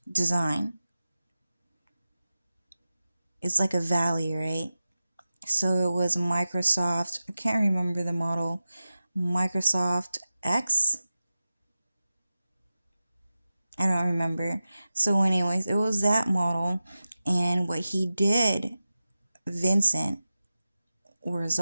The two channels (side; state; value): both; inverted; correlation -0.94